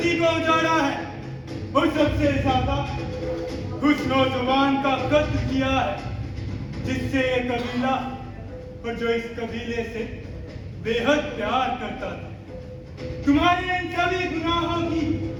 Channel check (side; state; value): both; identical; correlation 1.00